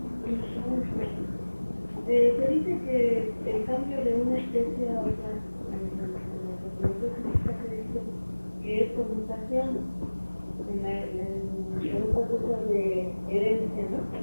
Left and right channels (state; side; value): inverted; both; correlation -1.00